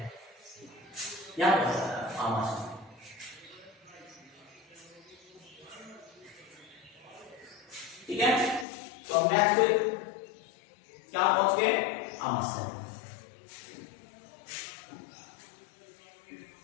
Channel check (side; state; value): right; drops out; at 8.7 s